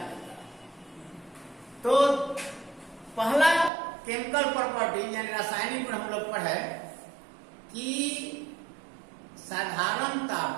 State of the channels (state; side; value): drops out; left; at 3.7 s